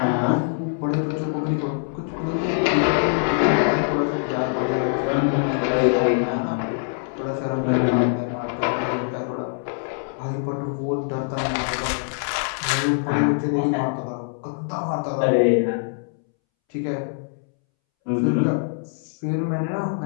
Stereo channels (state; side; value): silent; right; 63 dB below the other